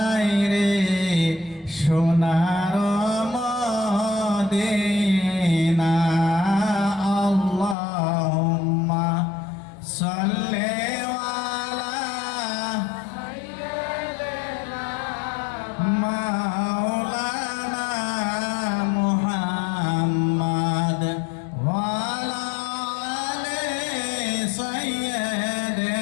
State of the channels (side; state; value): right; drops out; at 7.8 s